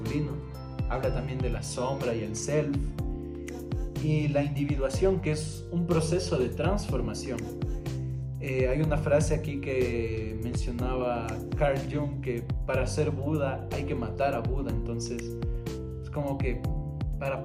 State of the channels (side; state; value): both; identical; correlation 1.00